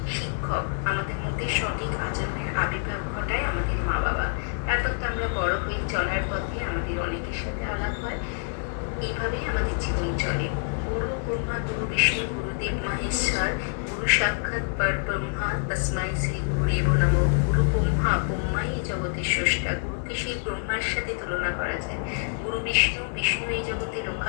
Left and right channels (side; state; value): right; silent; digital silence